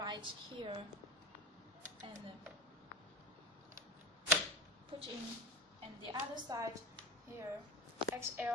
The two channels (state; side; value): normal; both; correlation 0.27